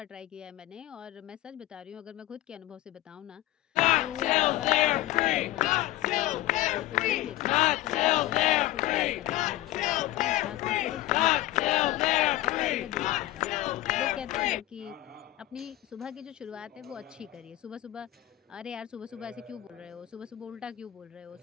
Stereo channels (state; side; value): quieter; right; 15.9 dB